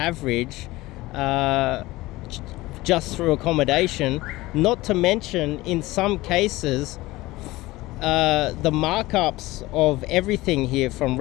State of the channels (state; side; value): quieter; right; 19.2 dB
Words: just through accommodation. Not to mention, in some cases, the markups of everything here, from